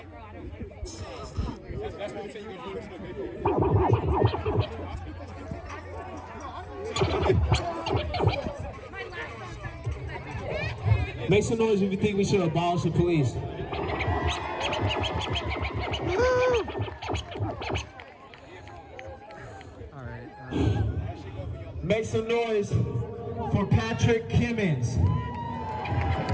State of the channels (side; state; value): both; identical; correlation 1.00